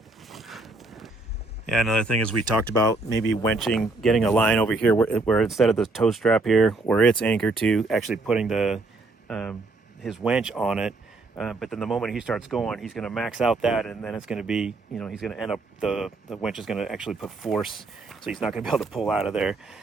Yeah, another thing is we talked about maybe winching, getting a line over here where instead of the tow strap here, where it's anchored to, actually putting the his winch on it. But then the moment he starts going, he's going to max out that, and then it's going to be, he's going to end up, the winch is going to actually put force, so he's not going to be able to pull out of there.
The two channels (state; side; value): quieter; left; 3.3 dB